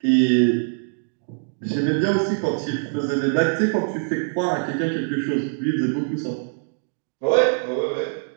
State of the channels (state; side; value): silent; left; digital silence